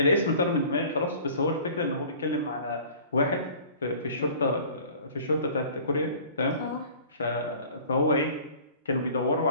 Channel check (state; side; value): inverted; both; correlation -0.47